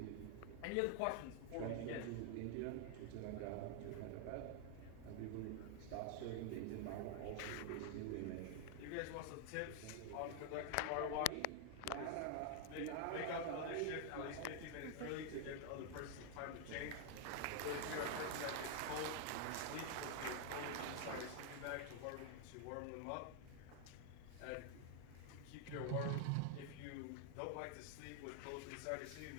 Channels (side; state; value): both; different; correlation 0.00